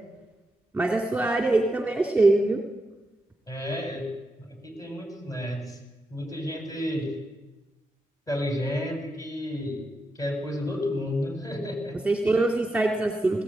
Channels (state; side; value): normal; both; correlation 0.86